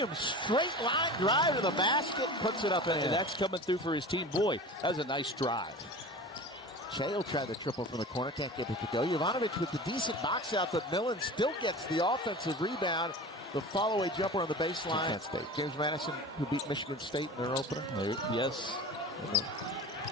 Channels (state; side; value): normal; both; correlation 0.35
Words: straight line drive to the basket, puts it up in. And that's coming through for his team. Boy, that was a nice drive. Shea will try the triple from the corner, can't get it to go. Jovanovic with the decent box out, but Millen still gets the offensive rebound. The follow-away jumper on the baseline. State. James Madison, who beat Michigan State in their opener. Yes.